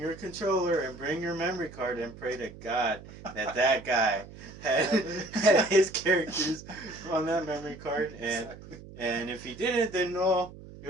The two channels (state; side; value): noise; right; hum, 17 dB below the sound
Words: controller and bring your memory card and pray to God that guy had his characters on that memory card, and Exactly. and if he didn't, then no, he